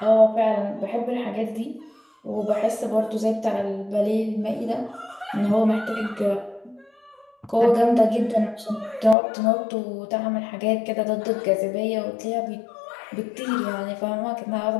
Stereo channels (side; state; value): right; drops out; at 9.2 s